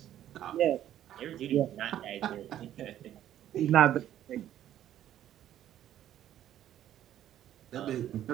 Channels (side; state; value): left; quieter; 11.7 dB